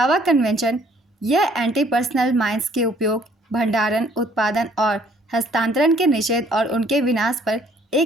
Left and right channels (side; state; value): both; normal; correlation 0.61